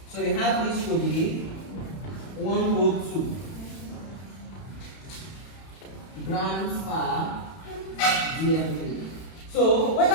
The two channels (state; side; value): late; right; 31 ms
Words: So we have this to be 102 grams per dm3. So